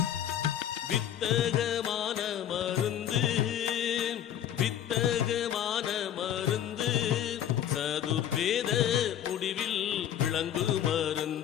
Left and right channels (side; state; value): right; quieter; 10.4 dB